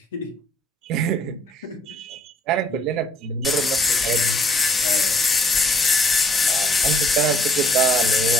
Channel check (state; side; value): normal; both; correlation 0.62